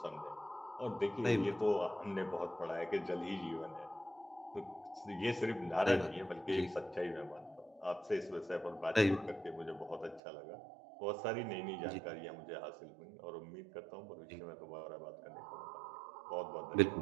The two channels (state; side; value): drops out; left; at 10.2 s